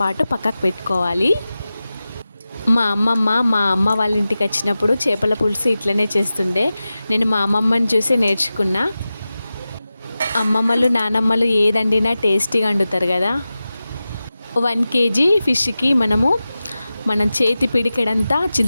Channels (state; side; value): inverted; both; correlation -0.95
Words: పాటు పక్కకు పెట్టుకోవాలి. మా అమ్మ వాళ్ళ ఇంటికి వచ్చినప్పుడు చేపల పులుసు ఇట్లనే చేస్తుండే. నేను మా అమ్మమ్మని చూసి నేర్చుకున్నా. అమ్మమ్మలు నానమ్మలు ఏదండినా టేస్టీగా వండుతారు కదా. 1 kg ఫిష్కి మనం చేతి పిడికెడంతా